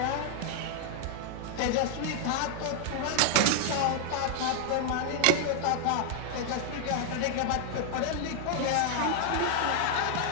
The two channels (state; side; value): different; both; correlation 0.00